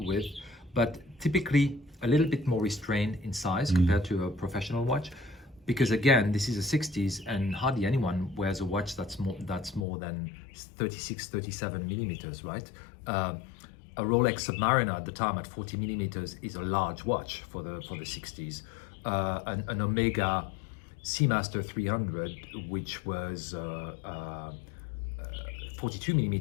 but typically a little bit more restrained in size compared to a professional watch. Because again, this is the 60s and hardly anyone wears a watch that's more than 36, 37 millimeters, right? A Rolex Submariner at the time at 40 millimeters is a large watch for the 60s. An Omega Seamaster 300, which was 42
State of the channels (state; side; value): drops out; right; at 9.9 s